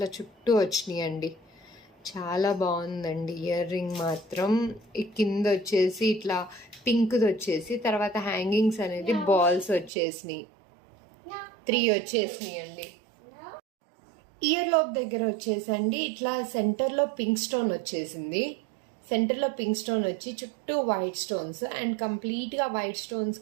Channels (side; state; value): left; drops out; at 9.9 s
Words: చుట్టూ వచ్చినాయి అండి. చాలా బాగుందండి ఇయర్ రింగ్ మాత్రం. ఈ కింద వచ్చేసి ఇట్లా పింక్ది వచ్చేసి, తర్వాత హ్యాంగింగ్స్ అనేది బాల్స్ వచ్చేసినాయి, 3 వచ్చేసినాయి అండి. ఇయర్ లోప్ దగ్గర వచ్చేసండి ఇట్లా సెంటర్లో పింక్ స్టోన్ వచ్చేసింది. సెంటర్లో పింక్ స్టోన్ వచ్చి చుట్టూ వైట్ స్టోన్స్, అండ్ కంప్లీట్గా వైట్